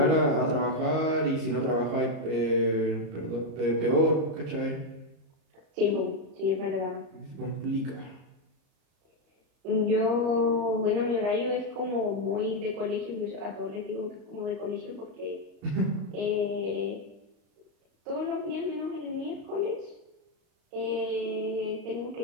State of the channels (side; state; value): left; late; 34 ms